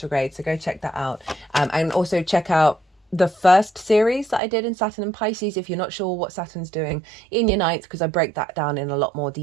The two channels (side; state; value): left; drops out; at 4.4 s